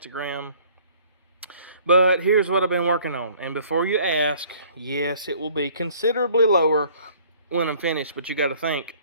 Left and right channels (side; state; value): both; inverted; correlation -0.55